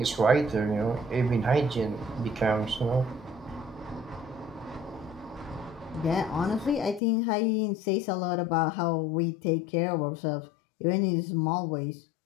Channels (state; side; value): drops out; right; at 7.0 s